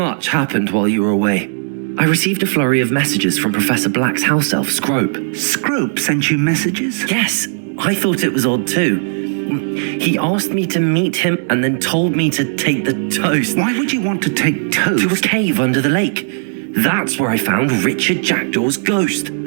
happened while you were away. I received a flurry of messages from Professor Black's house elf, Scrope. Scrope sent you messages? Yes, I thought it was odd too. He asked me to meet him and then told me to take the toast. Why would you want to take toast? To a cave under the lake. That's where I found Richard Jackdaw's ghost.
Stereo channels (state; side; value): silent; left; 69 dB below the other